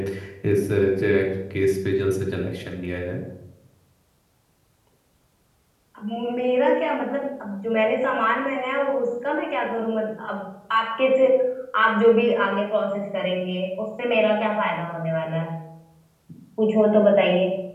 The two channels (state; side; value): identical; both; correlation 1.00